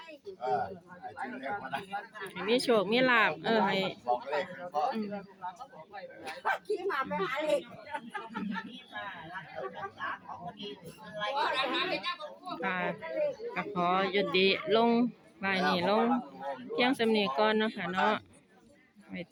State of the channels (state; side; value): identical; both; correlation 1.00